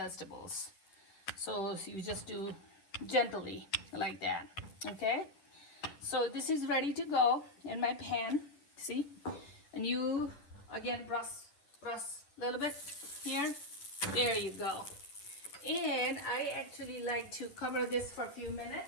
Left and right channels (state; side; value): late; right; 10 ms